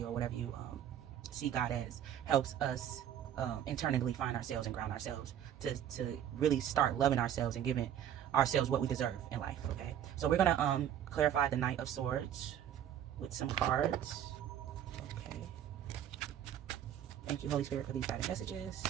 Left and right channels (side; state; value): left; quieter; 10.3 dB